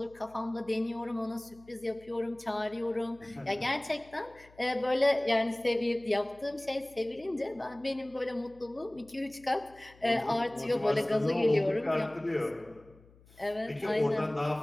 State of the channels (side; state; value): left; noise; hum, 26 dB below the sound